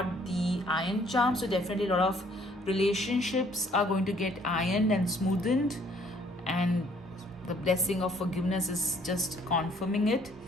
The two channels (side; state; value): both; normal; correlation 0.61